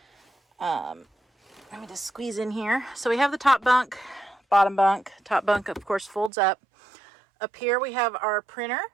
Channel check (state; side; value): drops out; left; at 6.3 s